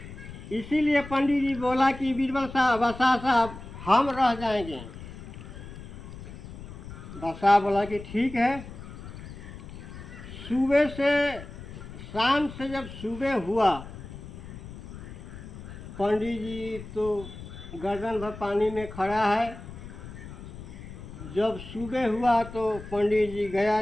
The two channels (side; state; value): left; noise; rumble, 13 dB below the sound